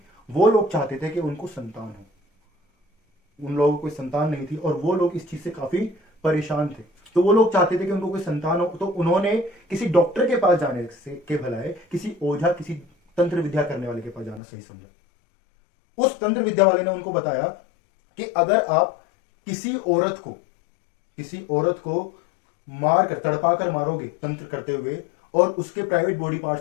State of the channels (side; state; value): right; drops out; at 14.4 s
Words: वो लोग चाहते थे कि उनको संतान हो। उन लोगों को कोई संतान नहीं थी और वो लोग इस चीज से काफी परेशान थे। तो वो लोग चाहते थे कि उनको कोई संतान हो, तो उन्होंने किसी डॉक्टर के पास जाने से के भलाए किसी ओझा, किसी तंत्र विद्या करने वाले के पास जाना सही समझा। उस तंत्र विद्या वाले ने उनको बताया कि अगर आप किसी औरत को मार कर, तड़पा कर मारोगे तंत्र करते हुए, और उसके प्राइवेट बॉडी